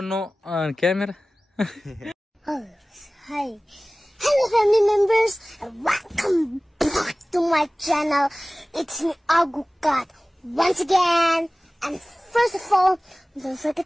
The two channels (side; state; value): both; normal; correlation 0.98